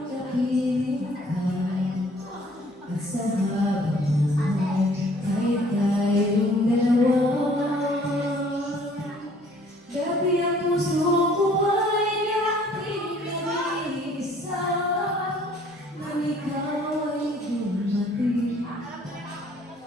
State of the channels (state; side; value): normal; both; correlation 0.57